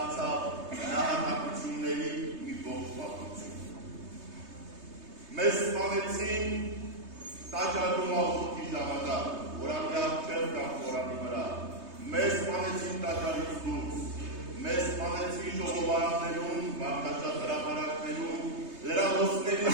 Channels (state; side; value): late; left; 3.2 ms